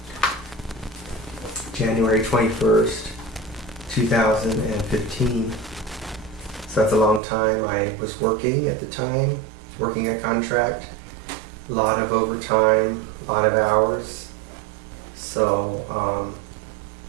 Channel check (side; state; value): left; drops out; at 7.2 s